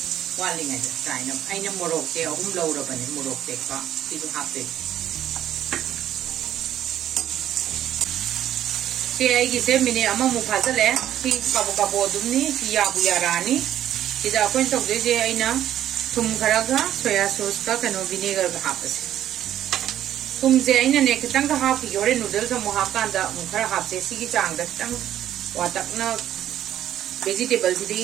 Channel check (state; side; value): quieter; left; 11.6 dB